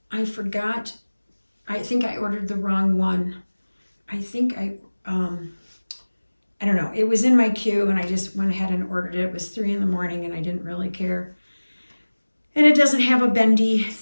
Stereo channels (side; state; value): both; inverted; correlation -1.00